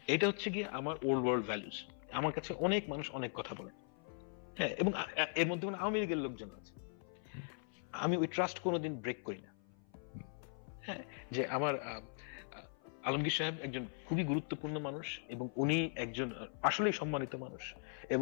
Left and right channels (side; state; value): right; silent; 51 dB below the other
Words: এটা হচ্ছে গিয়ে আমার ওল্ড ওয়ার্ল্ড ভ্যালুজ। আমার কাছে অনেক মানুষ অনেক কথা বলে, হ্যাঁ, এবং এর মধ্যে আওয়ামী লীগের লোকজন আছে, আমি ওই ট্রাস্ট কোনোদিন ব্রেক করি না। হ্যাঁ, যে আমার আলমগীর সাহেব একজন খুবই গুরুত্বপূর্ণ মানুষ এবং উনি একজন আসলেই সম্মানিত মানুষ